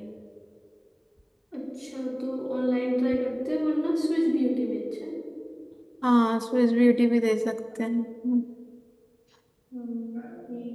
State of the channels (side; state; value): both; identical; correlation 1.00